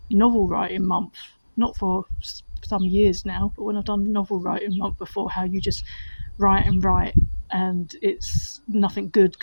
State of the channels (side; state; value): both; inverted; correlation -1.00